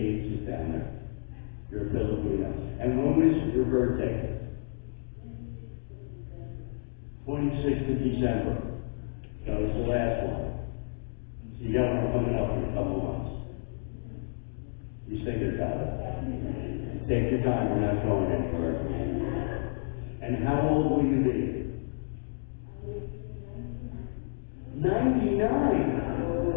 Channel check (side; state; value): right; silent; digital silence